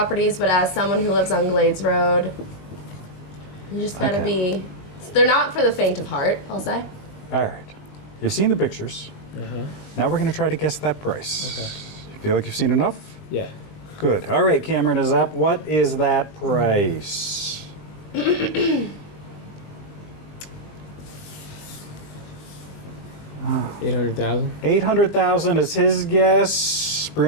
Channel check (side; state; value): right; late; 20 ms